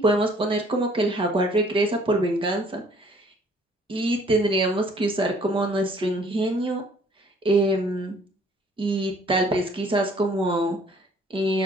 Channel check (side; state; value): both; normal; correlation 0.58